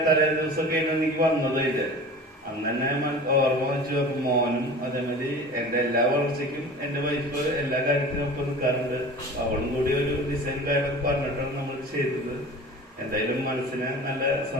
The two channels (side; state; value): both; normal; correlation 0.38